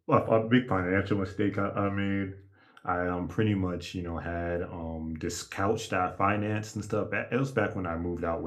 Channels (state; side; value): identical; both; correlation 1.00